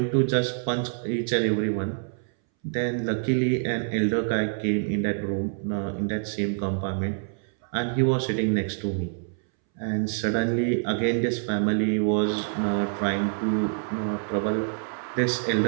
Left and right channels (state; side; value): silent; left; 61 dB below the other